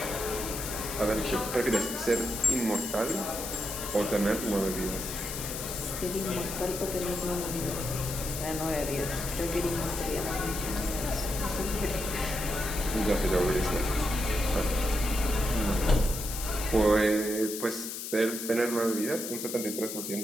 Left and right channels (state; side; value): noise; left; hiss, 6 dB below the sound